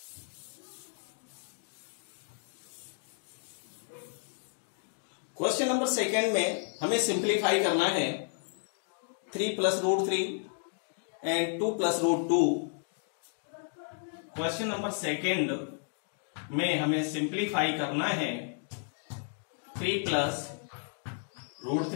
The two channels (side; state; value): right; silent; 56 dB below the other